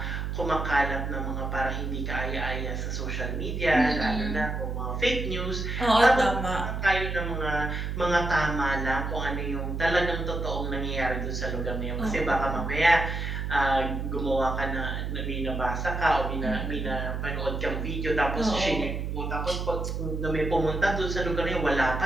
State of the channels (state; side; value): noise; right; hum, 3 dB below the sound